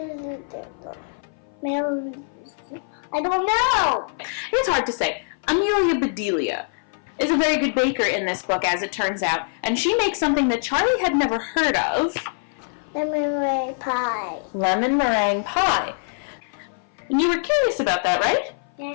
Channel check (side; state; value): right; silent; 57 dB below the other